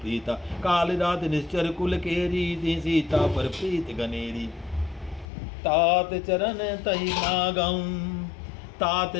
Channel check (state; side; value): drops out; right; at 5.2 s